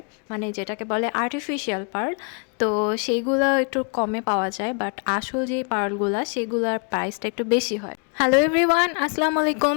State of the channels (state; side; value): quieter; right; 38.2 dB